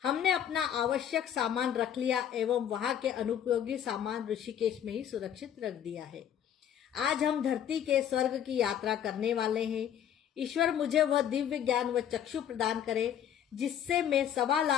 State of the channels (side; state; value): right; quieter; 9.5 dB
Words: हमने अपना आवश्यक सामान रख लिया एवं वहां के अनुपयोगी सामान ऋषिकेश में ही सुरक्षित रख दिया है। आज हम धरती के स्वर्ग की यात्रा करने वाले हैं। ईश्वर मुझे वह दिव्य ज्ञान व चक्षु प्रदान करे जिससे मैं 1.25